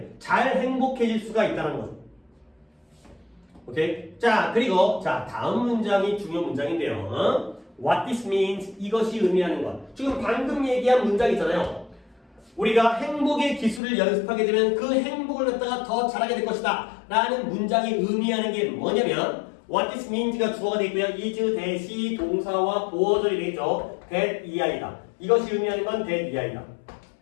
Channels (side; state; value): right; drops out; at 13.8 s